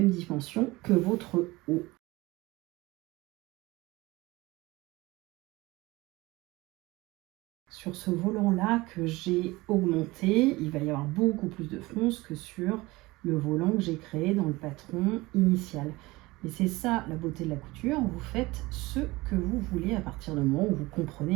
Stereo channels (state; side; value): quieter; left; 21.1 dB